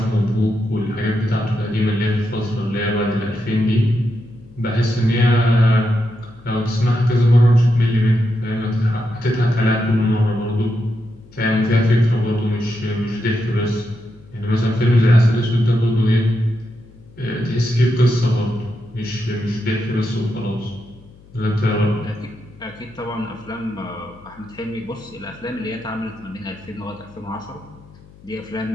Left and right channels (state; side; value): noise; left; hum, 24 dB below the sound